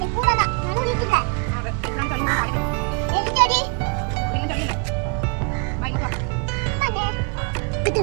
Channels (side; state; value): left; quieter; 35.1 dB